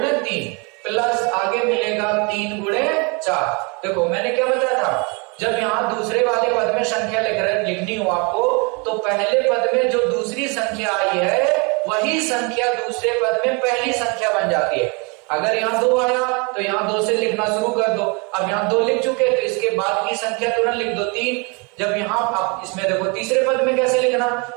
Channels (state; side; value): quieter; left; 31.4 dB